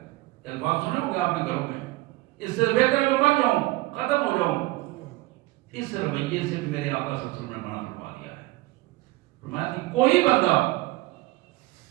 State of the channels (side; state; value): left; quieter; 19.8 dB